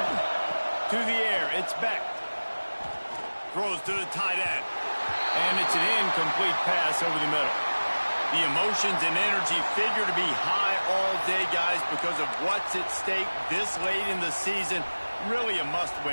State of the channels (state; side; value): inverted; both; correlation -1.00